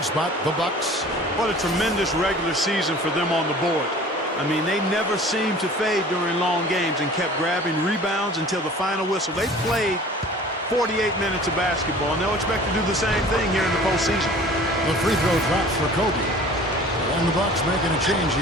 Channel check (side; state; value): both; normal; correlation 0.46